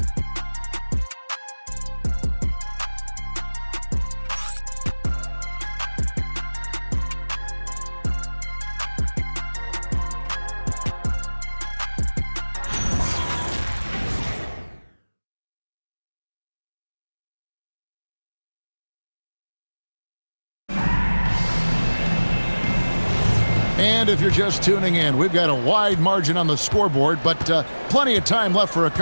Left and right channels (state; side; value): inverted; both; correlation -1.00